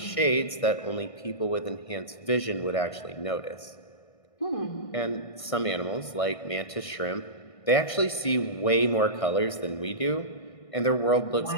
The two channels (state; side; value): late; right; 1.6 ms